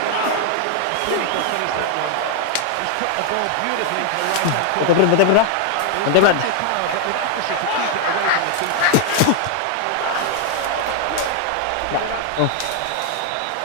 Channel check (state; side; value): different; both; correlation 0.00